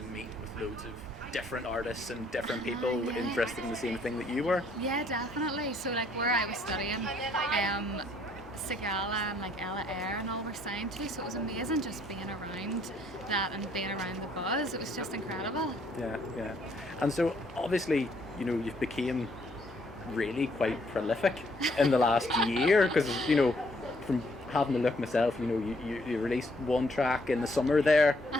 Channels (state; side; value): normal; both; correlation 0.66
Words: meet with loads of different artists and different people Yeah. interested in the same thing that you were. Yeah, definitely. So like where I was studying, Sigala and like Ella Eyre and all were signed to, so it was amazing just being around that and being around the buzz. It was just incredible. Yeah, yeah. And so obviously, you've became really quite prolific in the last year because, from having a look myself, you released one track in the summer there,